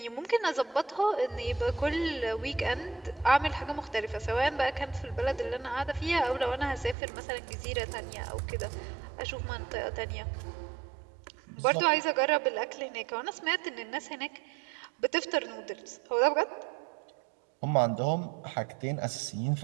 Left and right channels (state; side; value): drops out; left; at 7.0 s